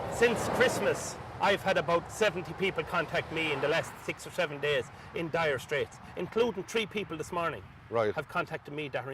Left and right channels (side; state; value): both; identical; correlation 1.00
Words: Since Christmas, I've had about 70 people contact me in the last 6 or 7 days in dire straits, including 3 people this morning. Right. Have contacted me that are